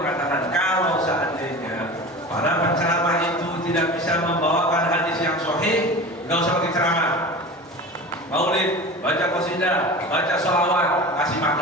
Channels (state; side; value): normal; both; correlation 0.33